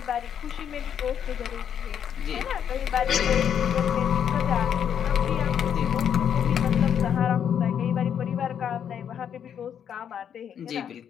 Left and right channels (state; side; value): quieter; right; 8.6 dB